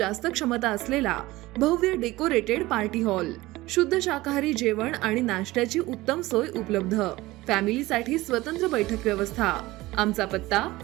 क्षमता असलेला भव्य डेकोरेटेड पार्टी हॉल, शुद्ध शाकाहारी जेवण आणि नाश्त्याची उत्तम सोय उपलब्ध, फॅमिलीसाठी स्वतंत्र बैठक व्यवस्था. आमचा पत्ता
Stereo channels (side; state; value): left; quieter; 18.9 dB